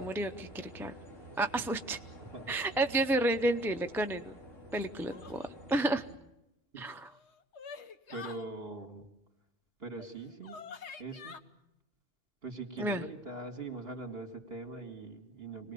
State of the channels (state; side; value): normal; both; correlation 0.57